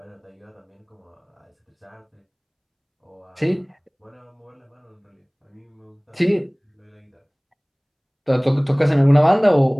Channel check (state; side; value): identical; both; correlation 1.00